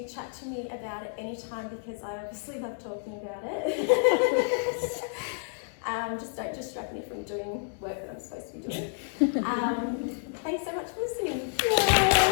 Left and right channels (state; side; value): silent; right; digital silence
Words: chat to me about it anytime, because I obviously love talking about it. Just don't distract me from doing work that I'm supposed to be doing. Thanks so much for listening.